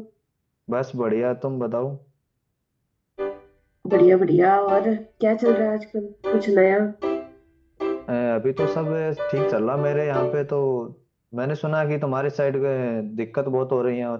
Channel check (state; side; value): identical; both; correlation 1.00